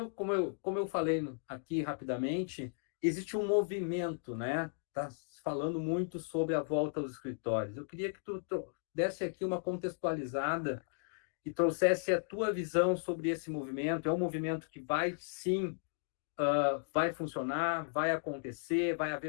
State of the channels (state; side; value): silent; right; digital silence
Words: como eu falei aqui rapidamente, existe um movimento, né? Tá falando muito sobre a volta aos escritórios. Eu queria que tu desse aqui uma contextualizada e trouxesse a tua visão sobre esse movimento. É um movimento que vai, sim, vai funcionar, vai acontecer, vai